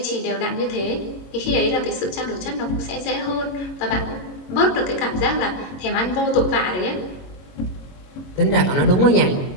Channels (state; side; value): late; right; 22 ms